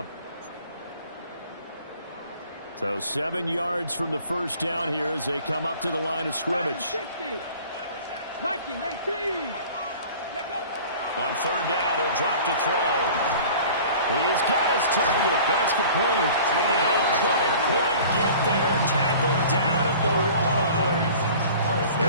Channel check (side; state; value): both; inverted; correlation -0.45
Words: So 7 yards from the first down here as they come up to the line of scrimmage. 19, 18. On third down, he'll drop to throw. He's got his target. That's complete. And he couldn't quite get there. Tackled down at the 1.